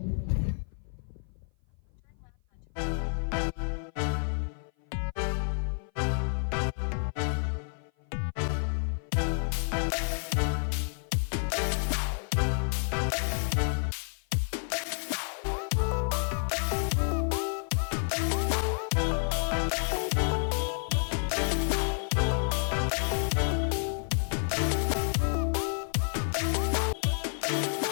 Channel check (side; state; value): right; silent; 55 dB below the other